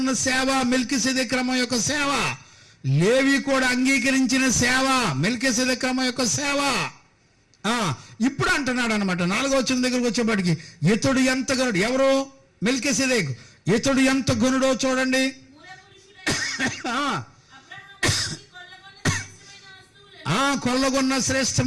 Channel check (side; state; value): both; identical; correlation 1.00